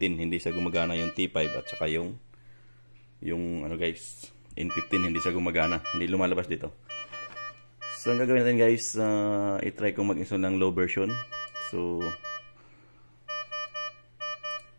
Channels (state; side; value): inverted; both; correlation -1.00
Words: Hindi siya gumagana yung T5 at saka yung ano guys, N15 hindi siya gumagana. Hindi lumalabas dito. So ang gagawin natin guys, i-try kong mag-install ng low version. So